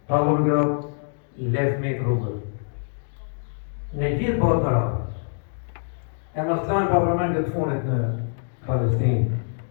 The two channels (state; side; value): silent; right; digital silence